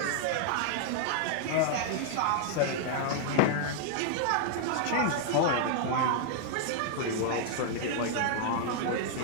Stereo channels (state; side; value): different; both; correlation 0.00